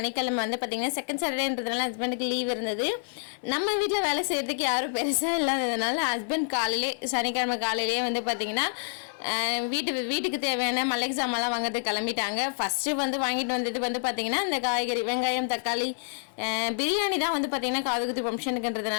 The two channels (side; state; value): right; silent; digital silence